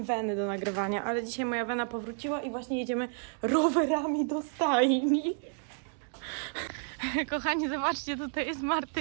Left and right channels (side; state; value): left; silent; 57 dB below the other